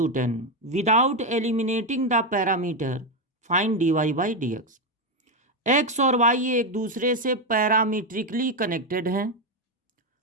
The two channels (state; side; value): normal; both; correlation 0.08